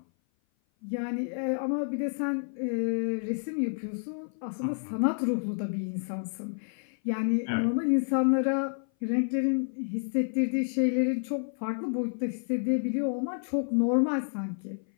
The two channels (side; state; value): right; silent; 56 dB below the other